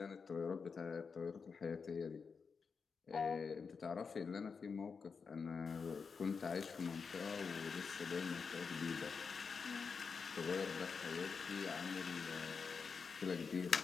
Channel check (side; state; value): right; quieter; 5.4 dB